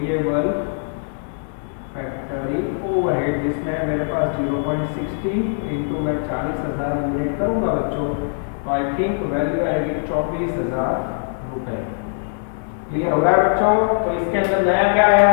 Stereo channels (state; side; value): silent; right; digital silence